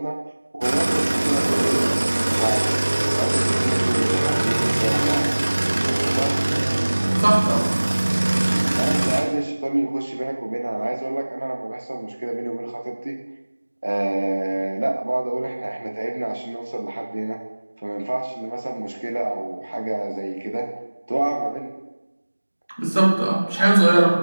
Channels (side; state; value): both; inverted; correlation -1.00